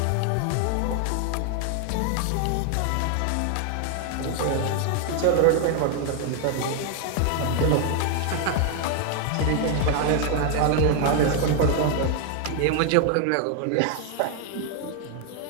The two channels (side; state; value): both; different; correlation 0.00